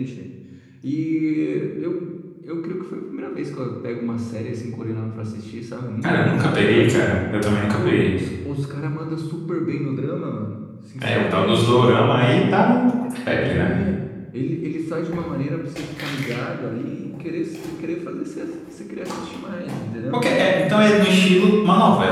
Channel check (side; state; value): both; identical; correlation 1.00